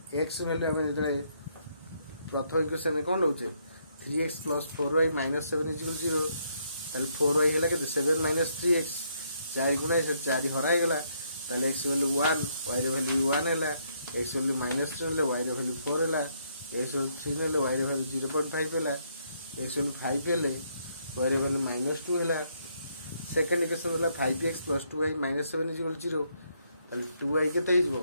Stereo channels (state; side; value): inverted; both; correlation -0.73